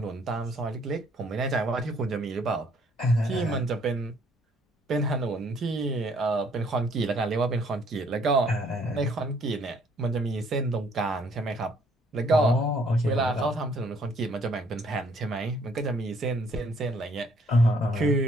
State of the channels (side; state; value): both; normal; correlation 0.63